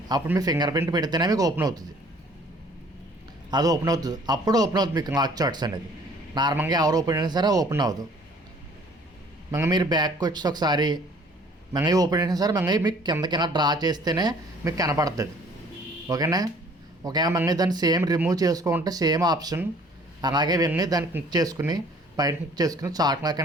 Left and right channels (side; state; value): both; normal; correlation 0.55